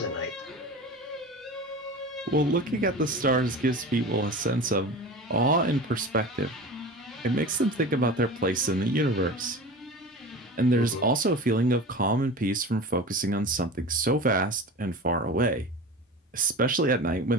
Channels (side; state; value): both; normal; correlation 0.33